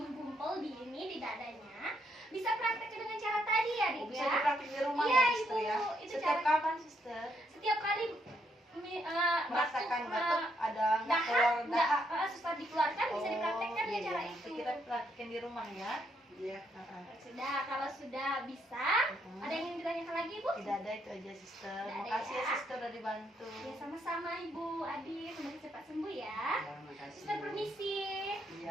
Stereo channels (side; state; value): both; normal; correlation 0.75